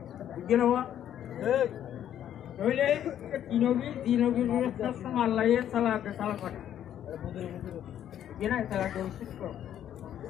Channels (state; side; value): quieter; right; 10.6 dB